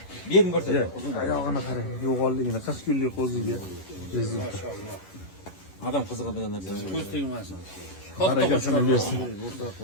Bering ko'rsat. Oyog'ini qarang, yo'g'onligini 40 kunlik o'ziga. Adam qiziqadigan narsa. Ko'z tegmasin. Barakasini bersin.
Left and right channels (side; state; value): right; late; 11 ms